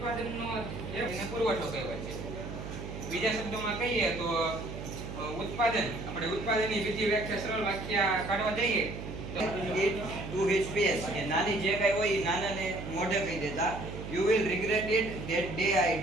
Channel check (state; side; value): noise; right; hum, 8 dB below the sound